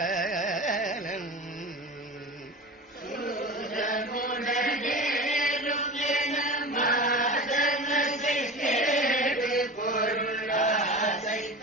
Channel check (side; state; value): both; normal; correlation 0.32